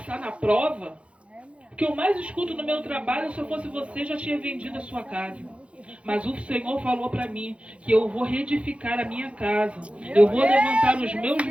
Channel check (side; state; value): left; late; 0.061 ms